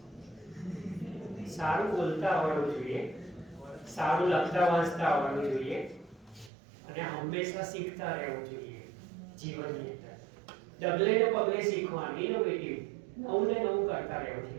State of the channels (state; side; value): drops out; left; at 6.5 s